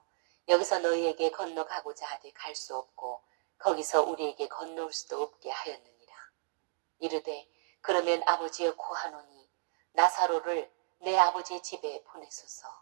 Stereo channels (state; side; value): silent; left; digital silence